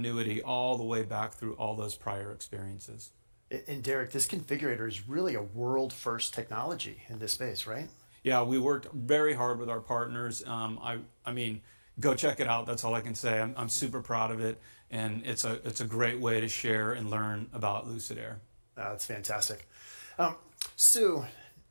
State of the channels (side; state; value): both; inverted; correlation -1.00